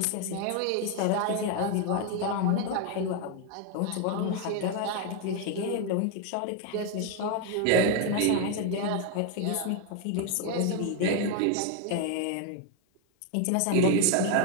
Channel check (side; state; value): both; different; correlation 0.01